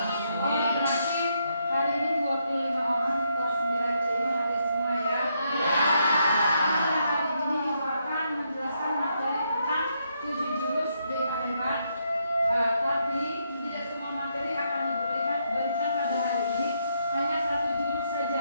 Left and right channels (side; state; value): both; inverted; correlation -0.77